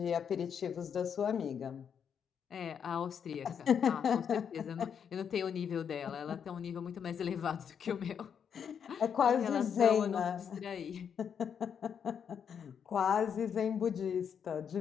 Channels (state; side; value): quieter; right; 7.6 dB